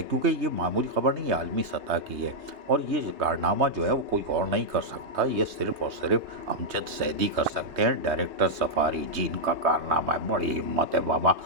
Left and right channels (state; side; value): late; left; 3.2 ms